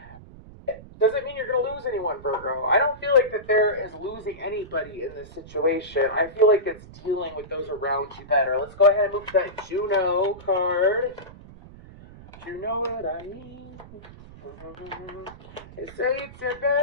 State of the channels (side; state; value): right; noise; rumble, 18 dB below the sound